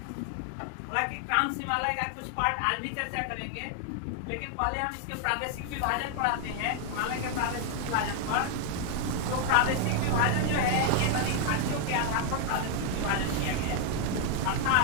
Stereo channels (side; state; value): both; different; correlation 0.00